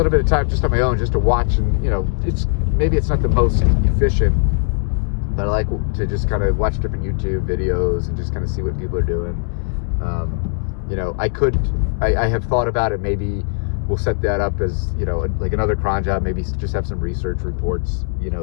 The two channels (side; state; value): right; silent; 66 dB below the other